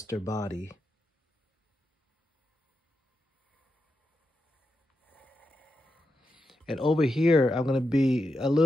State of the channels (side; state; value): both; normal; correlation 0.87